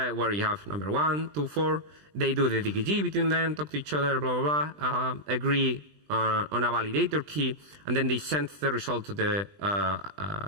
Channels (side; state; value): left; late; 20 ms